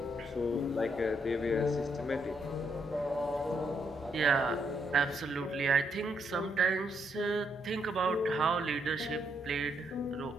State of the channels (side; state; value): both; normal; correlation 0.76